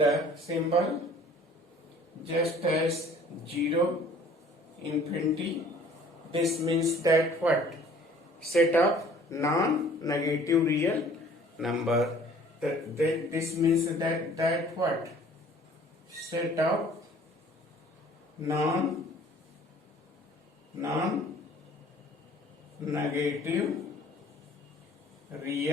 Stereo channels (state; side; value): normal; both; correlation 0.52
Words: symbol just as 0, infinity. This means that what? Set of non-negative real number. This means that what? Set of non-negative